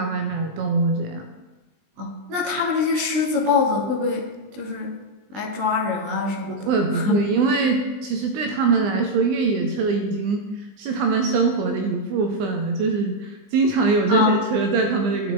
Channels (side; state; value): left; late; 20 ms